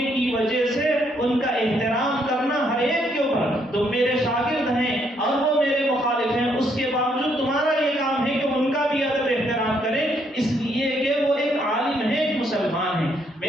کی وجہ سے ان کا احترام کرنا ہر ایک کے اوپر، تم میرے شاگرد ہیں اور وہ میرے مخالف ہیں، اس کے باوجود تمہارا یہ کام ہے کہ ان کا بھی ادب احترام کریں، اس لیے کہ وہ ایک عالم ہے، ایک مسلمان ہے۔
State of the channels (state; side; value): normal; both; correlation 0.72